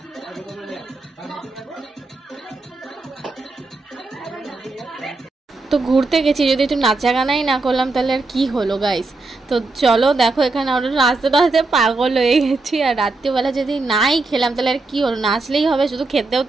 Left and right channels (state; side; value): quieter; left; 3.4 dB